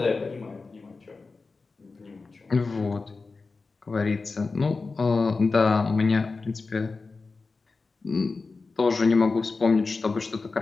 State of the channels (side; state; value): right; quieter; 4.1 dB